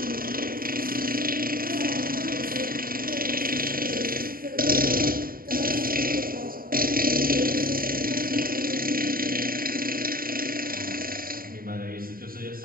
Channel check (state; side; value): late; left; 0.42 ms